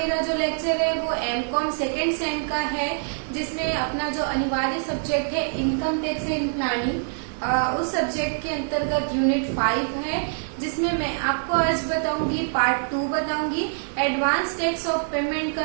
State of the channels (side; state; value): left; silent; digital silence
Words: जो लेक्चर है वो एमकॉम सेकेंड सेम का है, जिसमें अपना जो अनिवार्य सब्जेक्ट है इनकम टैक्स एंड प्लानिंग, उस सब्जेक्ट के अंतर्गत यूनिट 5 है, जिसमें मैं आपको आज बताऊंगी पार्ट 2 बताऊंगी। एडवांस टैक्स ऑफ पेमेंट